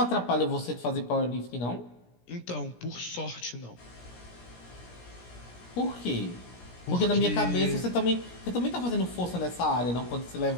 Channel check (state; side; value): late; right; 17 ms